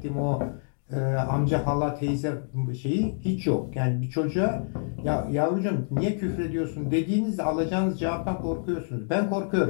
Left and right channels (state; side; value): silent; right; digital silence